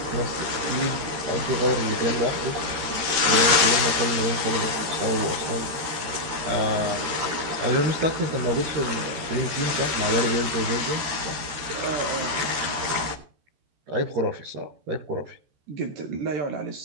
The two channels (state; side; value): late; left; 13 ms